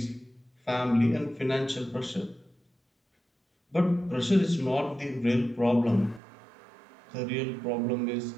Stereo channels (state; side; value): drops out; left; at 6.2 s